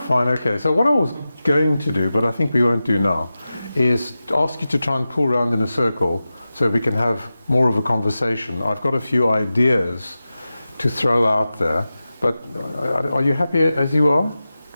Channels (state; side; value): inverted; both; correlation -0.94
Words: okay. So what I was going to do, but I think we won't do now, is ask you to try and pull around in a circle so we can have more of a conversation. I've got a few ideas to throw out there, but are you happy as you are?